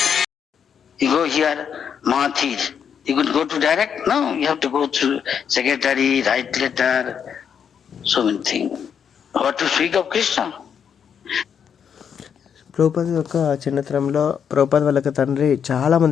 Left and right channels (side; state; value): right; quieter; 7.6 dB